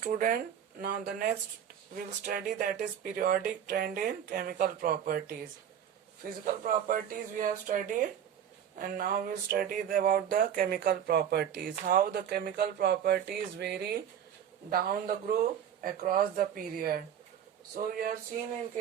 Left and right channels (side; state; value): left; quieter; 9.3 dB